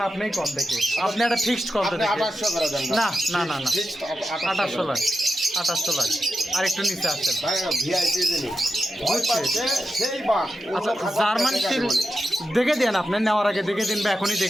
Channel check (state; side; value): normal; both; correlation 0.89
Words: আপনি কোন দেখি, আপনি একটা ফিক্সড কোন আপনি দেখি। 2800 করে দেন। না না না না, ফিক্সড 2800 লাখ, 2800 লাখ। আর একটু নিচে আসছেন। ভাই ভিআইপি জিনিস ভয় পাচ্ছে সেই বাঘ। আচ্ছা জার্মান শিল দেখে দেন, আপনি নেওয়ার আগে দেখে দিন বা এখনই